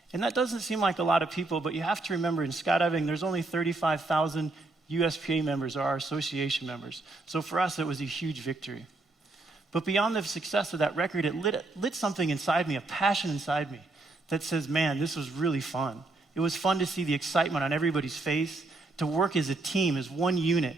And that doesn't seem like a lot of people, but you have to remember in skydiving, there's only 35,000 USPA members, or our association members. So for us, it was a huge victory. But beyond the success of that record, it lit something inside me, a passion inside me that says, man, this was really fun. It was fun to see the excitement on everybody's face, to work as a team, as one unit,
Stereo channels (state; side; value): quieter; left; 3.2 dB